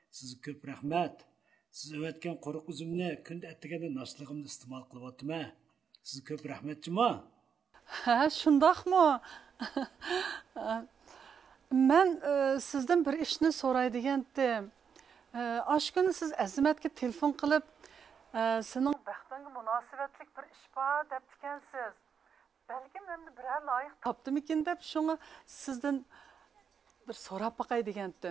Sizga ko'p rahmat. Siz evatgan quruq uzumni kunda attiganda noshligimni iste'mol qilyapman. Sizga ko'p rahmatchimi? Ha, shundoqmi? Men sizdan bir ishni so'raydigan edim. Oshkuni siz Azimatga telefon qilib, sening baxtingga munosabatlik bir ish bor deb ekansiz. Balki menda biror loyiq topdimikin deb shunga sizdan bir so'rab boqay degan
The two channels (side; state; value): left; quieter; 7.0 dB